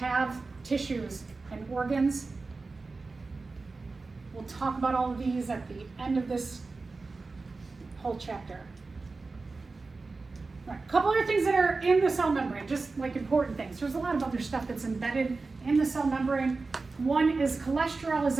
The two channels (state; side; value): quieter; left; 3.9 dB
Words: tissues and organs. We'll talk about all of these at the end of this whole chapter. All right, a couple other things that are in the cell membrane, just like important things. There's a lot of other stuff that's embedded in the cell membrane. One is cholesterol is